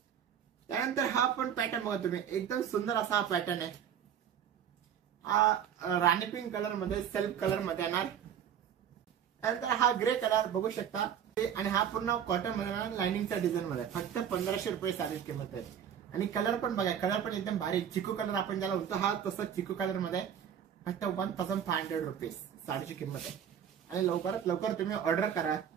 त्यानंतर हा पण पॅटर्न बघा तुम्ही, एकदम सुंदर असा हा पॅटर्न आहे. हा राणी पिंक कलर मध्ये सेल्फ कलर मध्ये येणार. त्यानंतर हा ग्रे कलर बघू शकता आणि हा पूर्ण कॉटन मध्ये लाइनिंगच्या डिझाईन मध्ये. फक्त 1500 रुपये साडीची किंमत आहे. आणि कलर पण बघा, कलर पण एकदम भारी चिकू कलर आपण ज्याला होतो हा तसं चिकू कलर मध्ये. फक्त 1500 रुपीज साडीची किंमत आहे. आणि लवकरात लवकर तुम्ही ऑर्डर करा.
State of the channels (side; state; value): left; quieter; 9.0 dB